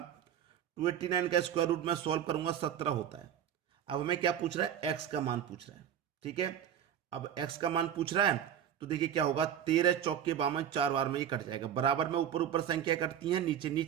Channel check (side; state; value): left; quieter; 9.6 dB